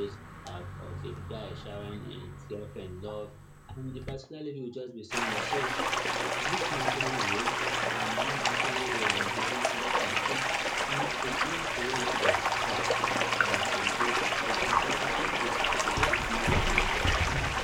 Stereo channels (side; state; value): both; identical; correlation 1.00